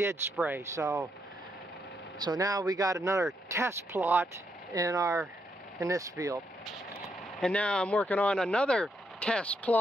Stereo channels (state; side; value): normal; both; correlation 0.78